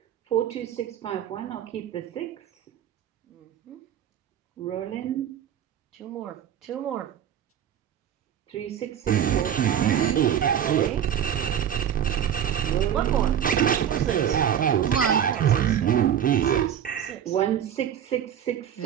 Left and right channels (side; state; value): left; quieter; 9.4 dB